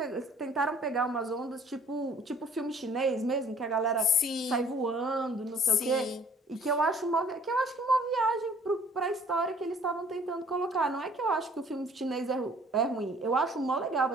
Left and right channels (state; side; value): normal; both; correlation 0.56